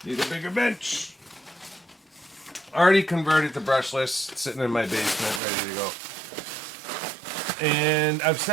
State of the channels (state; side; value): drops out; left; at 5.4 s